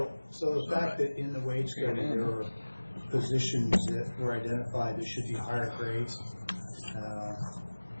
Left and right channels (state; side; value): inverted; both; correlation -1.00